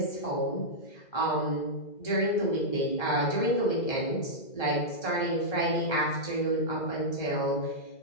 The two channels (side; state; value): right; late; 2.0 ms